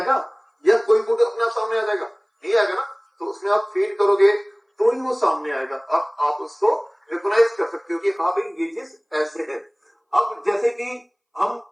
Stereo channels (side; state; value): both; identical; correlation 1.00